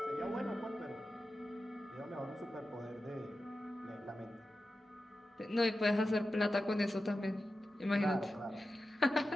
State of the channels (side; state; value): both; normal; correlation 0.92